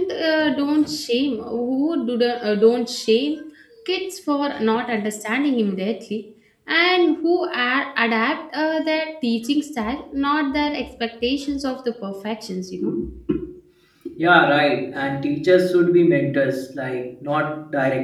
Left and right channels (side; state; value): both; identical; correlation 1.00